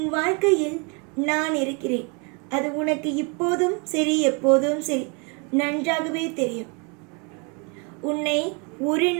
வாழ்க்கையில் நான் இருக்கிறேன். அது உனக்கு இப்போதும் சரி எப்போதும் சரி நன்றாகவே தெரியும். உன்னை ஒரு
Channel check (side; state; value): left; quieter; 33.2 dB